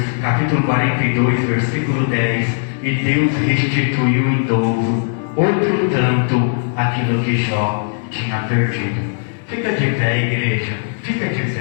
capítulo 42, versículo 10. E Deus restituiu em dobro outro tanto aquilo que Jó tinha perdido. Fica de pé, igreja, fica de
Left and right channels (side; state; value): right; silent; digital silence